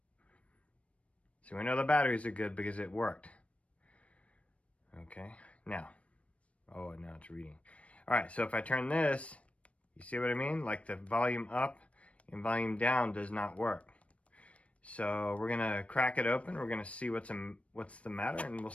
So we know the batteries are good because it worked. Okay, now it's reading. All right, so if I turn this, you see what I mean? Like the volume up and volume down does not work. So we're gonna crack it open. We're gonna see what's the matter, and we'll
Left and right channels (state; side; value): late; right; 0.063 ms